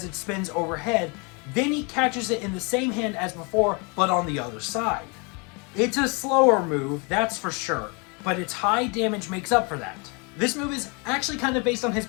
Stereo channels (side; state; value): right; quieter; 31.7 dB